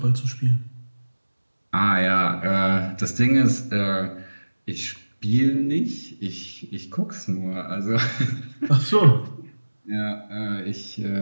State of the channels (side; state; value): both; inverted; correlation -1.00